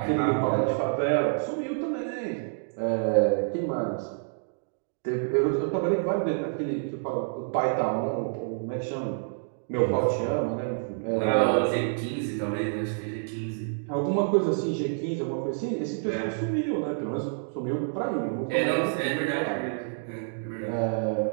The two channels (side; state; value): left; silent; digital silence